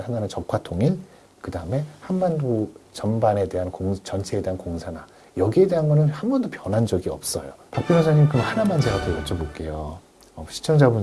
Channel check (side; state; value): both; identical; correlation 1.00